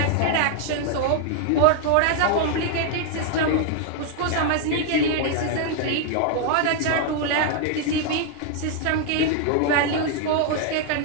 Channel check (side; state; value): both; different; correlation 0.00